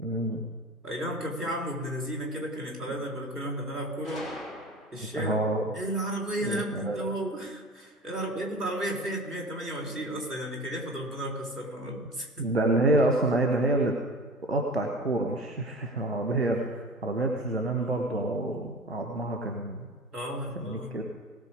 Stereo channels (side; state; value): both; normal; correlation 0.36